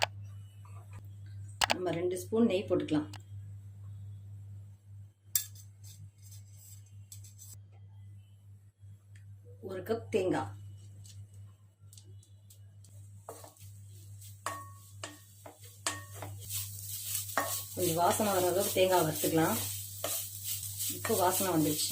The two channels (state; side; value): identical; both; correlation 1.00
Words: நம்ம 2 ஸ்பூன் நெய் போட்டுக்கலாம். ஒரு கப் தேங்காய், கொஞ்சம் வாசனை வர அளவுக்கு தேங்காய் வறுத்துக்கலாம். இப்போ வாசனை